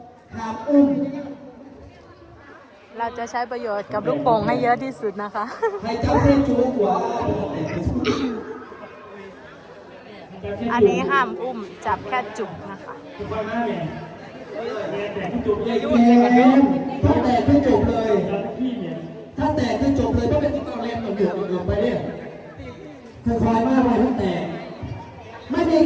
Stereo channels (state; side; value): identical; both; correlation 1.00